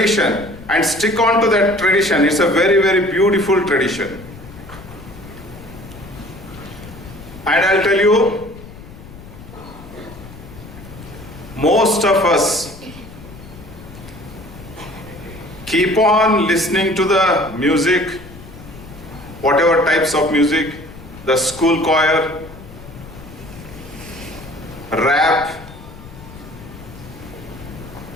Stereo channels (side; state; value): left; noise; rumble, 17 dB below the sound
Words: and stick on to that tradition. It's a very, very beautiful tradition. And I'll tell you, most of us keep on listening to the music, whatever types of music, the school choir, rap,